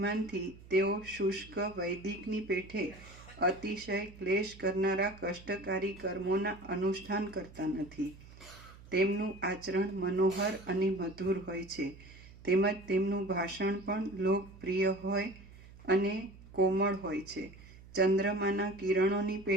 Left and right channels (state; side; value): noise; right; hum, 20 dB below the sound